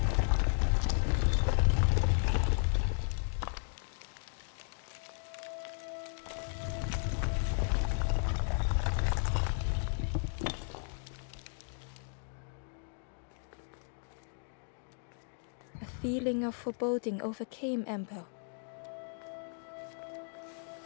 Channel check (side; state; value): right; silent; 54 dB below the other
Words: A feeling of foreboding overcame Ember.